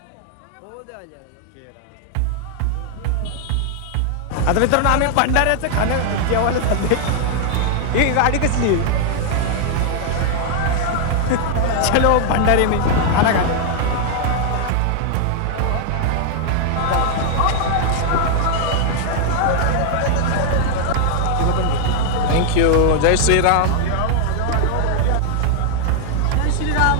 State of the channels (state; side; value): different; both; correlation 0.00